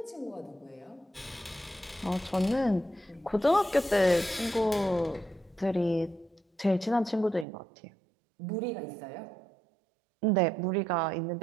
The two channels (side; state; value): left; drops out; at 7.5 s